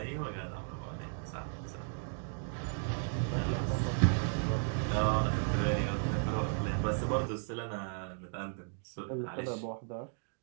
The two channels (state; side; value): silent; left; 54 dB below the other